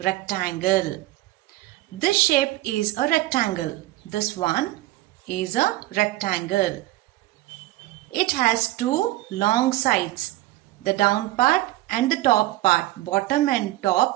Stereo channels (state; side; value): quieter; left; 17.4 dB